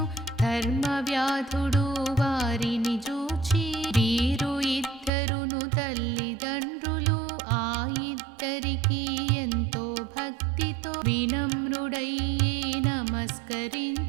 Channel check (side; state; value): left; drops out; at 5.1 s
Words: ధర్మవ్యాధుడు వారిని చూచి వీరు ఇద్దరును తల్లిదండ్రులు ఆ ఇద్దరికి ఎంతో భక్తితో వినమ్రుడయ్యే